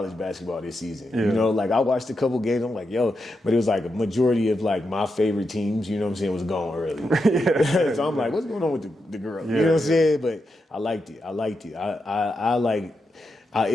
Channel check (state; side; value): normal; both; correlation 0.86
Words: basketball this season. You know, like I watched a couple games, I'm like, yo, but it was like a majority of like my favorite teams, you know what I'm saying, was gone early. So I'm like, what's going on with the girls? You know what I'm saying? But I liked it. I like